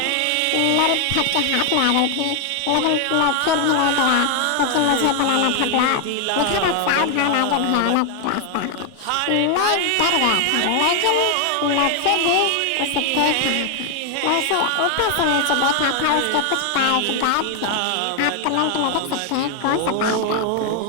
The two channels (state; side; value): different; both; correlation 0.00